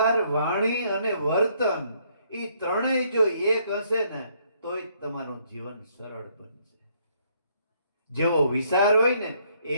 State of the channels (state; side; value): inverted; both; correlation -0.68